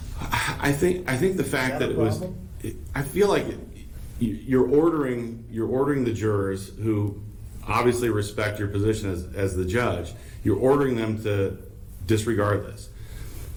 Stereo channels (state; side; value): identical; both; correlation 1.00